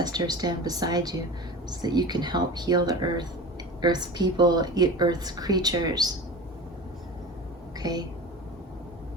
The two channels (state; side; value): normal; both; correlation 0.33